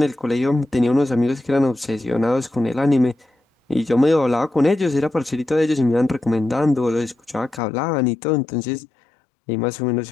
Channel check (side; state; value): right; drops out; at 7.6 s